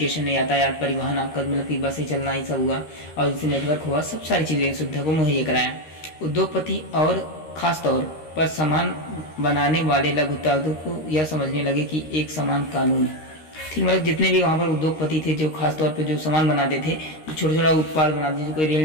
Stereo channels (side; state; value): right; late; 13 ms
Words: यातायात, परिवहन, आपका मतलब कि बसें चलना, ये सब हुआ, और जैसे नेटवर्क हुआ, सब सारी चीज़ें सुविधा को मुहैया कराया। उद्योगपति और खास तौर पर सामान बनाने वाले लघु उद्योगों को यह समझने लगे कि एक समान कानून, ठीक, मतलब जितने भी वहाँ पर उद्योगपति थे, जो खास तौर पे जो सामान बनाते थे, जो छोटा छोटा उत्पाद बनाते थे, कोई